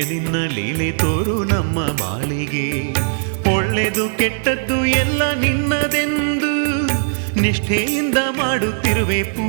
ನಿನ್ನ ಲೀಲೆ ತೋರು ನಮ್ಮ ಬಾಳಿಗೆ. ಒಳ್ಳೆದು ಕೆಟ್ಟದ್ದು ಎಲ್ಲ ನಿನ್ನದೆಂದು ನಿಷ್ಠೆಯಿಂದ ಮಾಡುತ್ತಿರುವೆ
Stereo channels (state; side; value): silent; left; digital silence